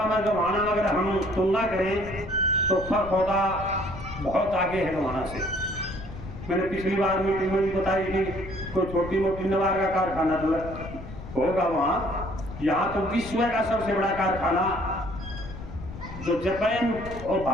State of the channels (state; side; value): noise; left; rumble, 12 dB below the sound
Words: में गोहाना अगर हम तुलना करें तो खरखौदा बहुत आगे है वहाँ से। मैंने पिछली बार मीटिंग में भी बताई कि कोई छोटी मोटी नवार का कारखाना तो होगा वहाँ। यहाँ तो विश्व का सबसे बड़ा कारखाना जो जापान और